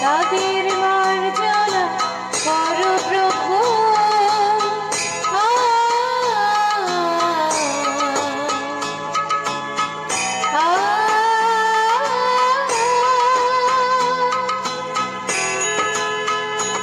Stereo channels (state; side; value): identical; both; correlation 1.00